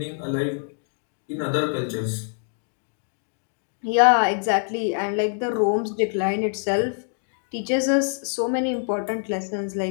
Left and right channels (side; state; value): right; silent; digital silence